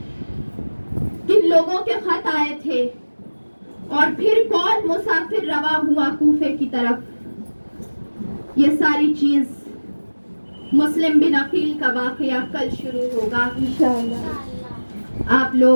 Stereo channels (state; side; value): inverted; both; correlation -1.00